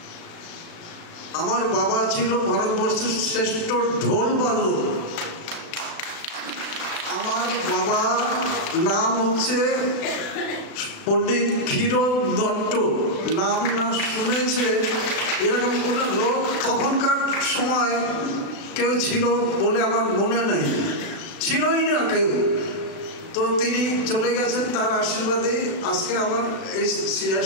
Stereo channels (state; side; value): late; right; 36 ms